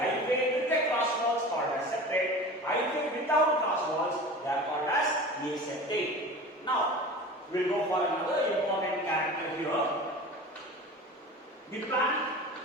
with the cross walls called as septate. Hyphae without cross walls, they are called as aseptate. Now, we will go for another important character here. The plant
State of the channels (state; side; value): normal; both; correlation 0.36